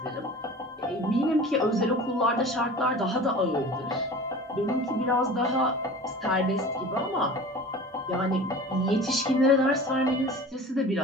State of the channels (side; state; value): both; normal; correlation 0.38